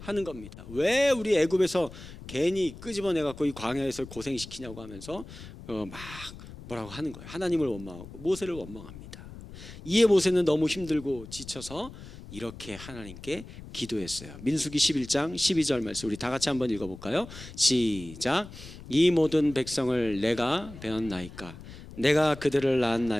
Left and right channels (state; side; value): noise; left; rumble, 15 dB below the sound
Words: 겁니다. 왜 우리 애굽에서 괜히 끄집어내 갖고 이 광야에서 고생시키냐고 하면서 막 뭐라고 하는 거예요. 하나님을 원망하고 모세를 원망합니다. 이에 모세는 너무 힘들고 지쳐서 이렇게 하나님께 기도했어요. 민수기 11장 12절 말씀 우리 다 같이 한번 읽어볼까요? 시작. 이 모든 백성을 내가 배웠나이까, 내가 그들을